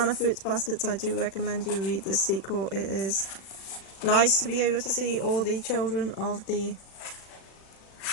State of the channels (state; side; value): late; right; 36 ms